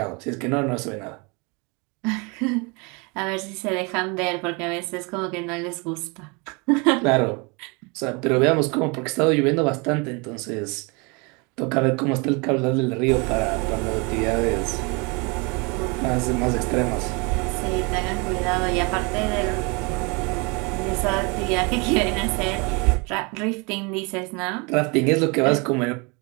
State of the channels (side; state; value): left; quieter; 29.9 dB